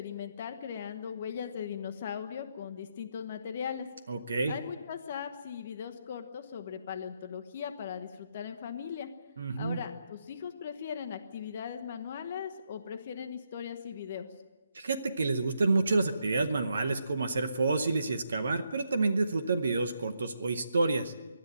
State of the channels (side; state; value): both; inverted; correlation -0.79